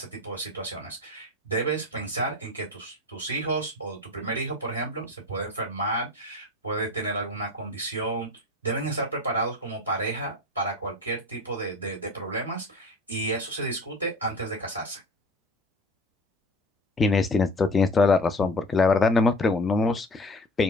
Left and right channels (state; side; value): normal; both; correlation 0.35